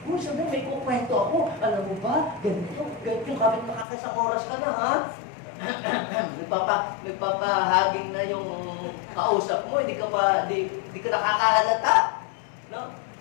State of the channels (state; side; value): drops out; right; at 3.9 s